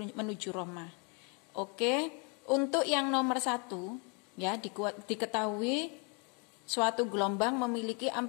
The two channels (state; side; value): quieter; right; 34.5 dB